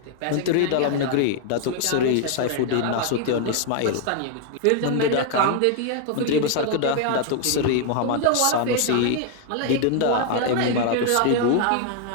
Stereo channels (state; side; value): different; both; correlation 0.00